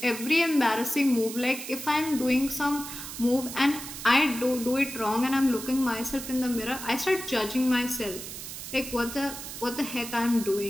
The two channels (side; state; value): right; noise; hiss, 9 dB below the sound